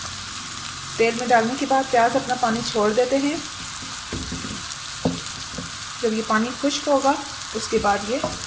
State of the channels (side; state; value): both; identical; correlation 1.00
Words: तेल में डालने के बाद प्याज अपना पानी छोड़ देते हैं। जब ये पानी खुश्क होगा उसके बाद ये